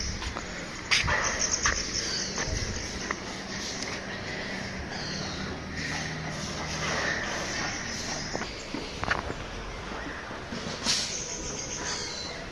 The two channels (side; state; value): both; identical; correlation 1.00